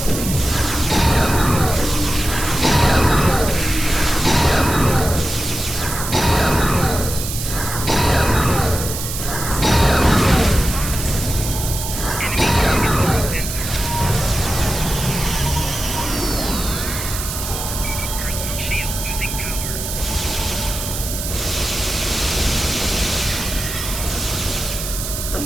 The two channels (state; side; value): noise; right; hiss, 6 dB below the sound